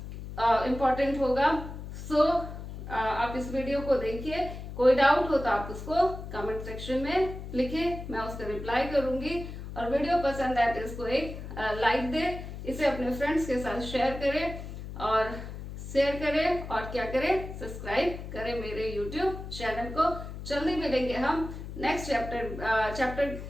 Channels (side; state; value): left; noise; hum, 9 dB below the sound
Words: होगा। सो आप इस वीडियो को देखिए, कोई डाउट हो तो आप उसको कमेंट सेक्शन में लिखे, मैं उसका रिप्लाई करूंगी। और वीडियो पसंद आए तो इसको एक लाइक दे, इसे अपने फ्रेंड्स के साथ शेयर करें और क्या करें, सब्सक्राइब करें मेरे यूट्यूब चैनल को। जल्दी मिलेंगे हम नेक्स्ट चैप्टर